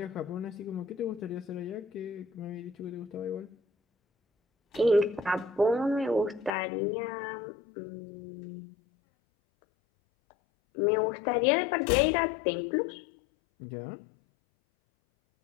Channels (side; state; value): right; drops out; at 6.5 s